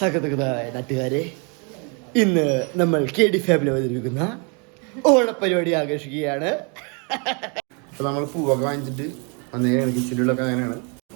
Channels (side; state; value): left; quieter; 35.0 dB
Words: നാട്ടുകാരെ, ഇന്ന് നമ്മൾ KD ഫാമിലി അവതരിപ്പിക്കുന്ന ഓണപ്പരിപാടി ആഘോഷിക്കുകയാണ്. അപ്പോൾ നമ്മൾ പൂവൊക്കെ വാങ്ങിച്ചിട്ട് വന്നേക്കാണ്. കിച്ചണിലൊക്കെ അങ്ങനെയാണ്.